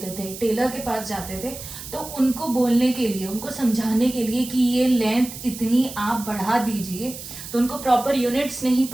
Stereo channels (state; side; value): noise; right; hiss, 12 dB below the sound